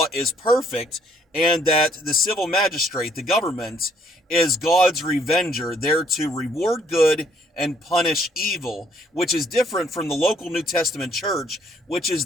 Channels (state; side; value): normal; both; correlation 0.66